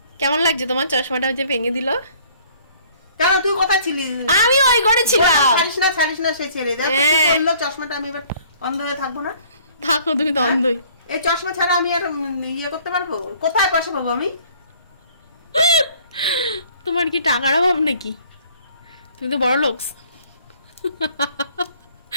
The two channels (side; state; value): both; inverted; correlation -0.56